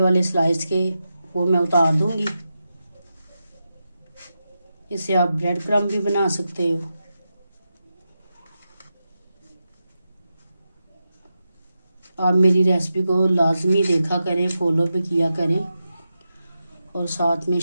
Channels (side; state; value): both; inverted; correlation -0.89